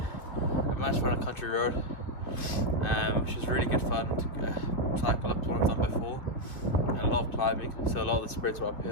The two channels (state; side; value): late; right; 2.8 ms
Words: I managed to find a country road, which was really good fun to cycle up to one I've done before, and a lot of climbing, so a lot of the sprints were